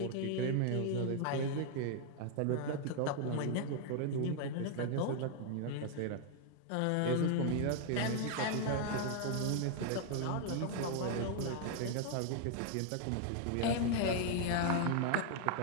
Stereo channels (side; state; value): both; different; correlation 0.00